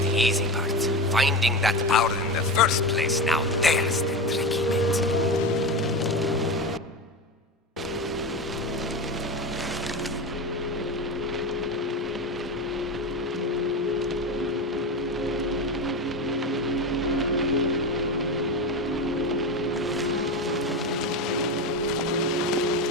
easy part. Finding that power in the first place, now there's the tricky bit.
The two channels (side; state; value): both; normal; correlation 0.22